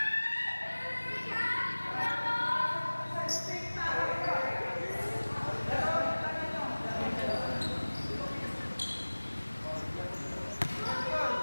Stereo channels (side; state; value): both; inverted; correlation -1.00